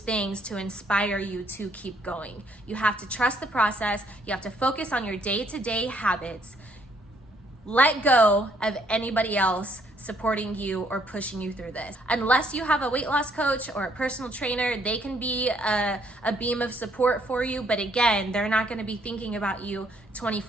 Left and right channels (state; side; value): normal; both; correlation 0.68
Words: to inspire you to keep going. You have to trust the process. You have to focus on your day-to-day habits. Let go of anybody else supporting you or pushing you through this. Unless you have a weight loss coach or a personal trainer, they can be a beam of support for you, but again, they're not gonna be thinking about you